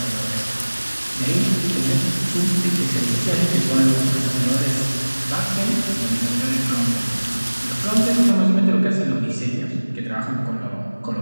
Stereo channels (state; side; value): inverted; both; correlation -1.00